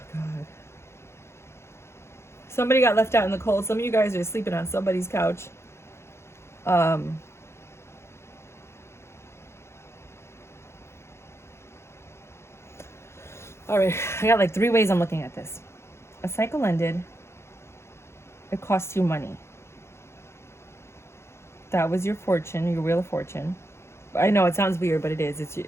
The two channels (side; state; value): right; late; 0.13 ms